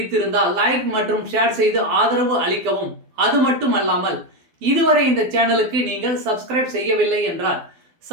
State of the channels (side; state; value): left; late; 12 ms